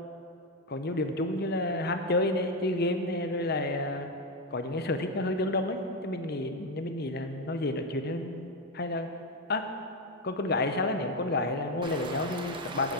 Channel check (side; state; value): both; normal; correlation 0.09